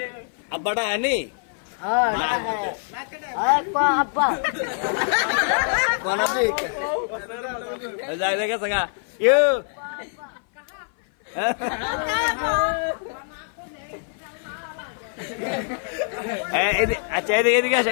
আব্বাটা আনি আব্বা কোন আপনি যাই দেখে সঙ্গা ইউ আচ্ছা এদিকে এদিকে আসেন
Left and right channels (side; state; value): right; silent; 57 dB below the other